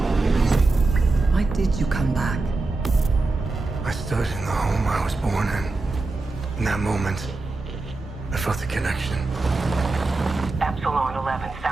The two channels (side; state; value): left; quieter; 3.4 dB